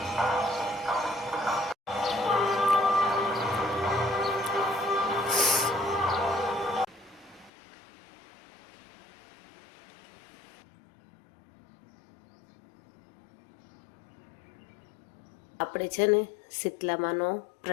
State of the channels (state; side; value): drops out; right; at 7.5 s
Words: આપણે છે ને શીતલામાનો